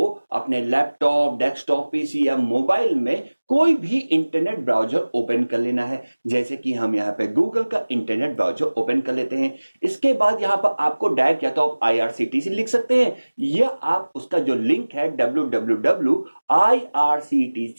अपने लैपटॉप, डेस्कटॉप, पीसी या मोबाइल में कोई भी इंटरनेट ब्राउजर ओपन कर लेना है। जैसे कि हम यहाँ पे गूगल का इंटरनेट ब्राउजर ओपन कर लेते हैं। इसके बाद यहाँ पर आपको डायरेक्ट या तो आप आईआरसीटीसी लिख सकते हैं या आप उसका जो लिंक है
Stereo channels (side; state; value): both; inverted; correlation -1.00